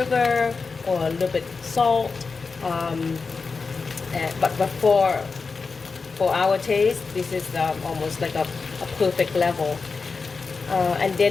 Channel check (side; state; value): right; quieter; 4.6 dB